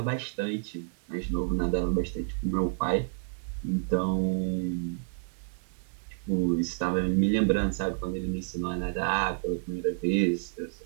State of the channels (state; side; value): silent; left; digital silence